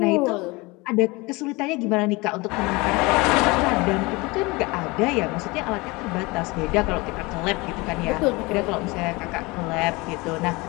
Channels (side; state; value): right; quieter; 24.3 dB